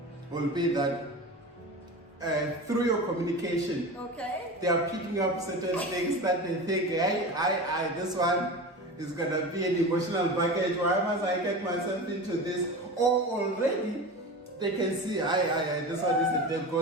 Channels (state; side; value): normal; both; correlation 0.29